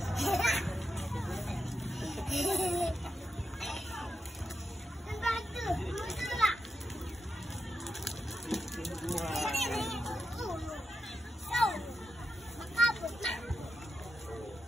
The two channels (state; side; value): normal; both; correlation 0.87